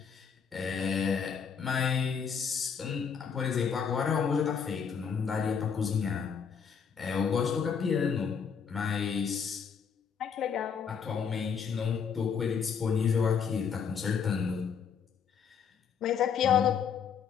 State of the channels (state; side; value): quieter; right; 6.7 dB